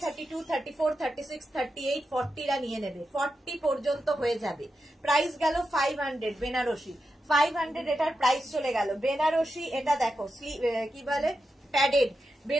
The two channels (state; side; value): normal; both; correlation 0.88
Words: 32, 34, 36, 38, 40 রা নিয়ে নেবে, 40 পর্যন্ত হয়ে যাবে। প্রাইস গেল 500 বেনারসি, 500 এটার প্রাইস চলে গেল। বেনারসি এটা দেখো, কি বলে প্যাডেড,